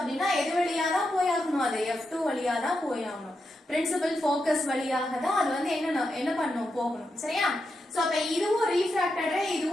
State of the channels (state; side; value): normal; both; correlation 0.86